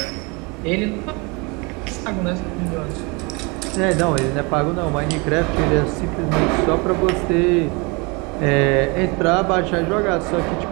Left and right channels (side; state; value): left; quieter; 28.8 dB